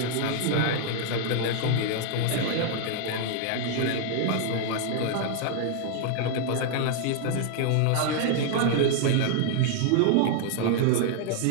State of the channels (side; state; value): both; different; correlation 0.00